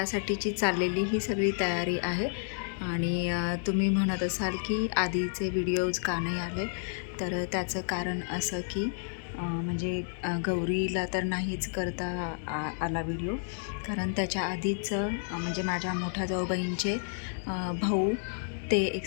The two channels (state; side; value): silent; right; digital silence